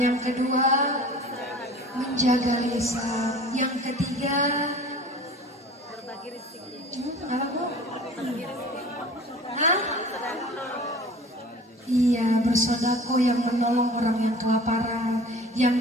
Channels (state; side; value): normal; both; correlation 0.44